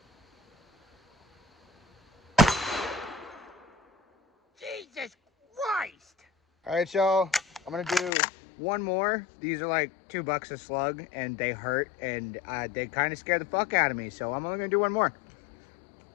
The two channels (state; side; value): drops out; right; at 8.1 s